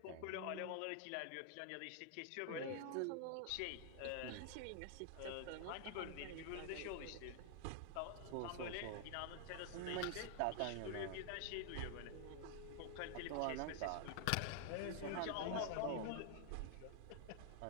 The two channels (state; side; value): different; both; correlation 0.00